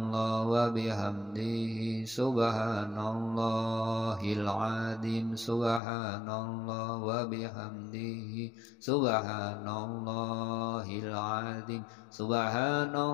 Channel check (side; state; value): right; drops out; at 5.8 s